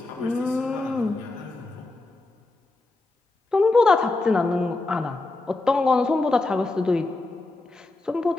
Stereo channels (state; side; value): quieter; right; 3.1 dB